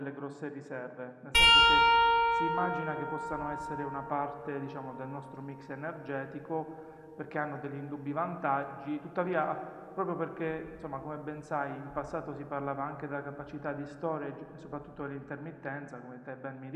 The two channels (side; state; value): both; identical; correlation 1.00